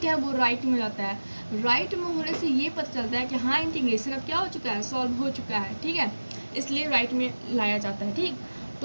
है वो राइट में जाता है। राइट में होने से ये पता चलता है कि हाँ इंटीग्रेशन अब क्या हो चुका है? सॉल्व हो चुका है, ठीक है। इसलिए राइट में लाया जाता है, ठीक।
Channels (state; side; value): inverted; both; correlation -1.00